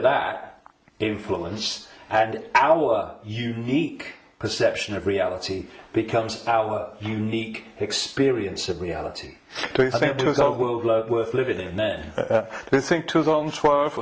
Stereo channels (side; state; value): both; identical; correlation 1.00